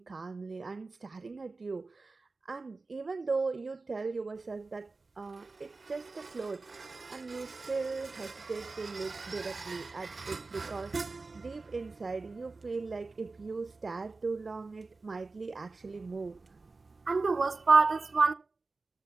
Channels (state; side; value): quieter; left; 3.8 dB